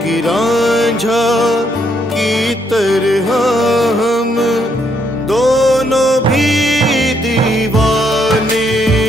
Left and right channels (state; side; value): normal; both; correlation 0.73